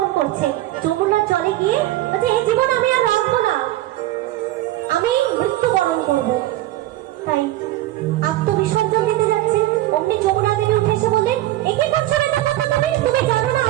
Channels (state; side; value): quieter; left; 15.4 dB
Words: করছে। যমুনার জলে গিয়ে বলছে এই জীবন আমি আর রাখবো না, আমি মৃত্যুবরণ করব। তাই আত্মবিসর্জন দিতে যাচ্ছে। অমনি যমুনা দেবী উঠে এসে বললেন এ কি করছো বেদপতি দেবী, তুমি জানো না